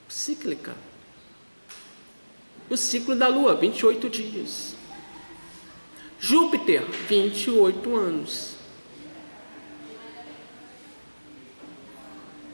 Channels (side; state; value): both; inverted; correlation -1.00